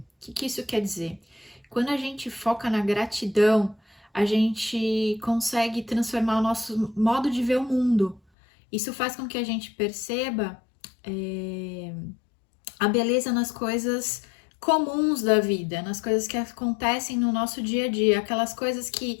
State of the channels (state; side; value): drops out; right; at 8.2 s